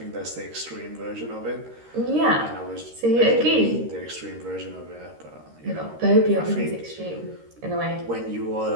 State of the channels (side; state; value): left; late; 13 ms